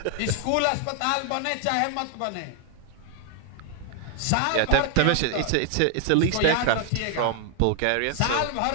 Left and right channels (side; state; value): both; different; correlation 0.00